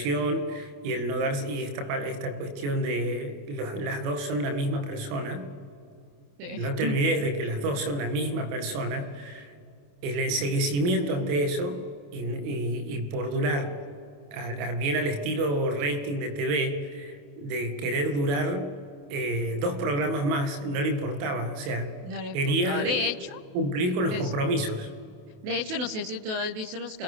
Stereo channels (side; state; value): left; late; 28 ms